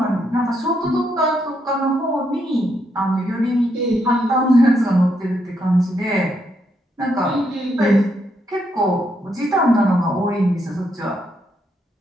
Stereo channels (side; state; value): both; normal; correlation 0.77